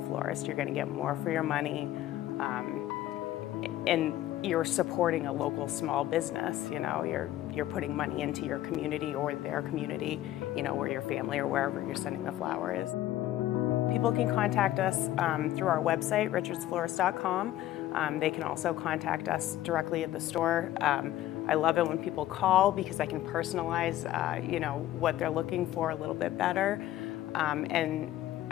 florist. You're going to get more for your money. and you're supporting a local small business. You know, you're putting money into your community or their community, you know, where your family or wherever you're sending the flower is. People can contact us through our website, richardsflorist.com. They can also contact us directly at the store. I love it when people call because I can personalize, you know, what they're looking for a little bit better. And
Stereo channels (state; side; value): quieter; right; 13.9 dB